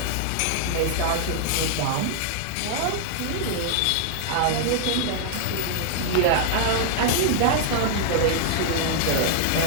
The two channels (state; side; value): different; both; correlation -0.01